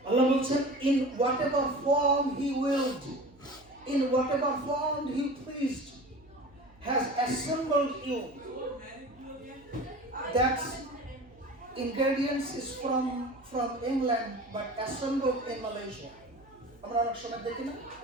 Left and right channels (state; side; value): noise; right; hum, 27 dB below the sound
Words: আল্লাহ বলছেন in whatever form he willed, in whatever form he pleased, has assembled you. That ingredients is from England but assembled in Malaysia. আমরা অনেক সময় দেখি না